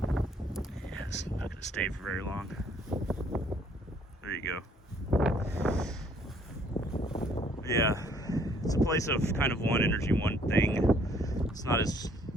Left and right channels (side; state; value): both; normal; correlation 0.62